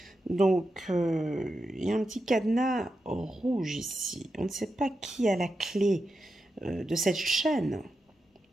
Donc, il y a un petit cadenas rouge ici. On ne sait pas qui a la clé de cette chaîne.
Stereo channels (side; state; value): both; normal; correlation 0.88